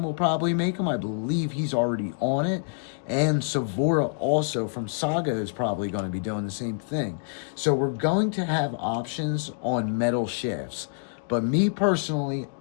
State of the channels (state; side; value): silent; right; digital silence